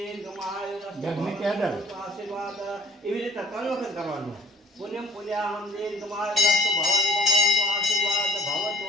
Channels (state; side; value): normal; both; correlation 0.54